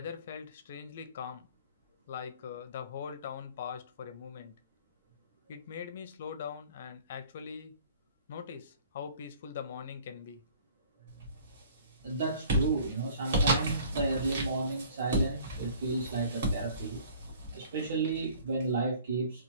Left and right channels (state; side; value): inverted; both; correlation -0.51